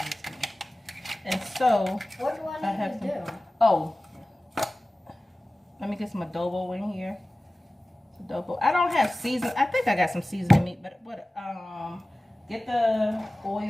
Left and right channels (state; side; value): normal; both; correlation 0.96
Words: and so What do I have need to do? oh, let me get some adobo in here. Adobo. I don't have season. I think I got some seasoning meat, but what? Get the